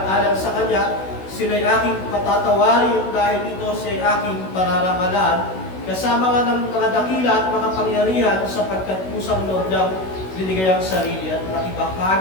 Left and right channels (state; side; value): late; right; 16 ms